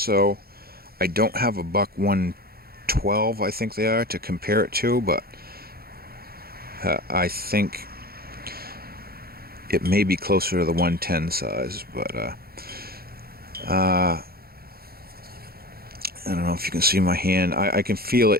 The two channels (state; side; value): late; left; 0.44 ms